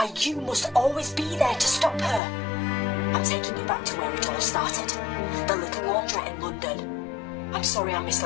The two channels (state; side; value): drops out; right; at 2.2 s